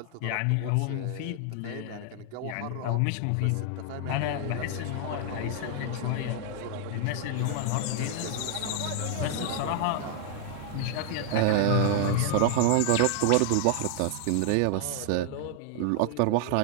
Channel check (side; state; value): both; different; correlation 0.00